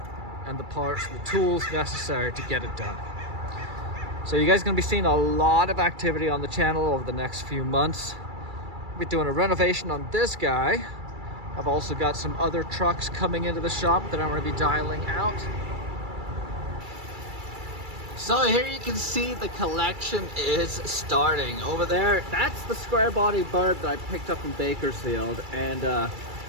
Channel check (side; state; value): left; late; 2.3 ms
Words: and the parts, the tools necessary to get it done. So you guys are going to be seeing a lot of activity on the channel over the next few months. We'll be doing a renovation on this guy. I've also got some other trucks coming into the shop that I'm going to be dialing out. So here you can see the collection is starting. Over there, that's the square body bird that I picked up in Bakersfield, and